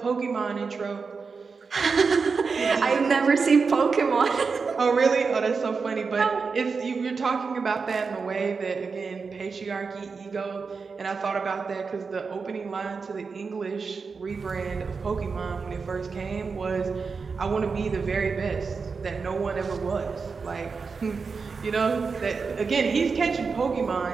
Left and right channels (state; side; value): quieter; left; 5.0 dB